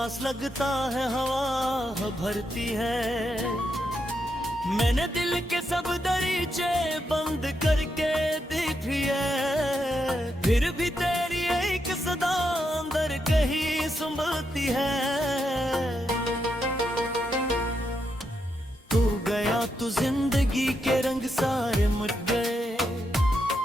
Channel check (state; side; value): normal; both; correlation 0.82